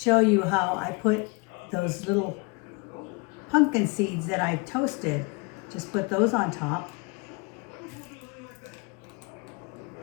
you how I put those little pumpkin seeds that I've toasted. Just put those on top.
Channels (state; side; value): quieter; right; 30.4 dB